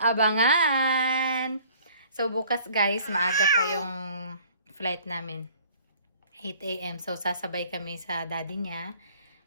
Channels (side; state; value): both; inverted; correlation -0.54